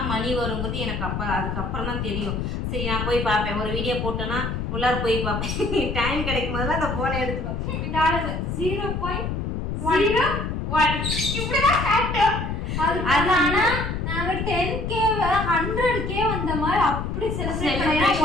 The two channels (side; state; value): left; noise; rumble, 3 dB below the sound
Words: மணி வருங்கிறது எனக்கு அதுக்கப்புறம் தான் தெரியும். சரி நான் போய் பார்ப்பேன். ஒரு வீடியோ போட்டேன்னா உள்ளார போய் பார்ப்பேன். டைம் கிடைக்கும் போதெல்லாம் அந்த போனை எடுத்துப்பேன். 0.01 இப்படிதான் காட்டும். ஆனா நாங்க 10K 100K வந்த மாதிரி அப்படி செலிப்ரேட் பண்ணோம்.